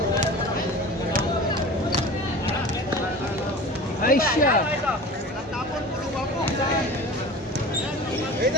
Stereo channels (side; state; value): both; normal; correlation 0.37